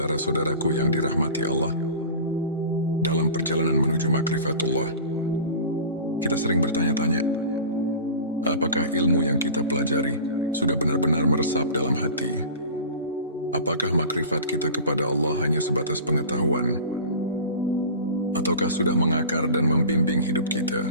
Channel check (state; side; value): inverted; both; correlation -0.36